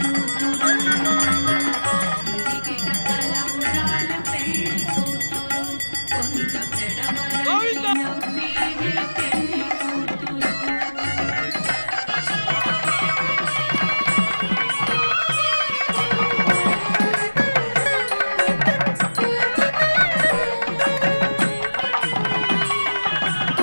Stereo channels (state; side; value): inverted; both; correlation -1.00